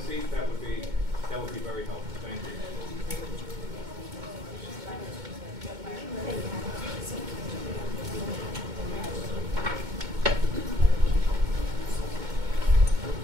seat, that would be very helpful. Thank you.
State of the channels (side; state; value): left; late; 2.2 ms